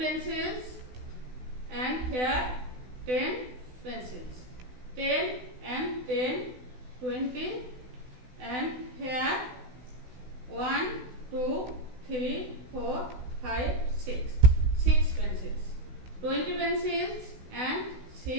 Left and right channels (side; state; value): left; late; 16 ms